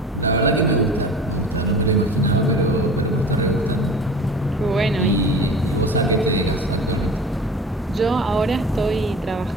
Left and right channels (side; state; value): both; normal; correlation 0.38